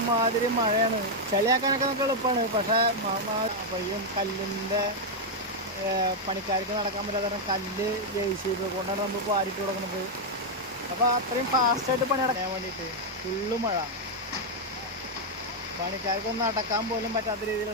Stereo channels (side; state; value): both; normal; correlation -0.01